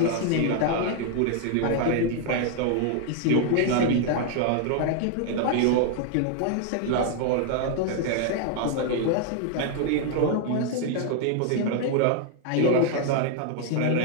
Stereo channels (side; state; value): both; different; correlation 0.00